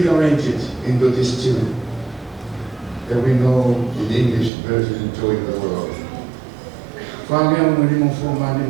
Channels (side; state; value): left; drops out; at 4.5 s